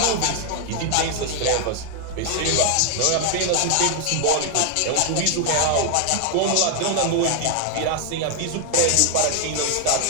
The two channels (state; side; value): different; both; correlation 0.00